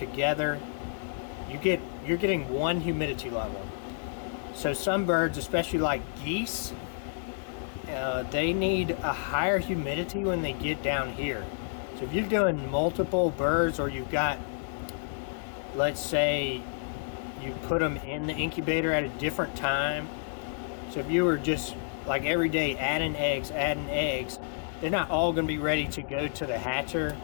you're getting one humidity level. So some birds, especially like geese, they need a higher humidity when they get down here. So if you're doing multiple birds, or you've got, let's say you put them in the incubator at a different time. So if you were just like every day adding eggs, they're not all going to be ready to go to the hatcher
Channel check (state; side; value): silent; right; digital silence